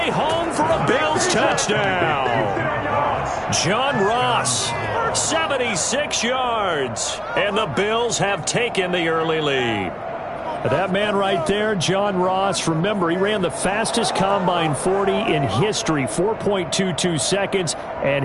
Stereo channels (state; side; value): identical; both; correlation 1.00